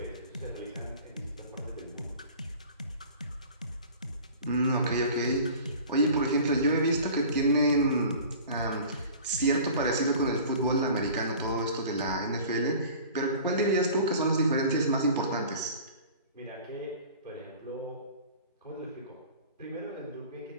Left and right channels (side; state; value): both; inverted; correlation -0.43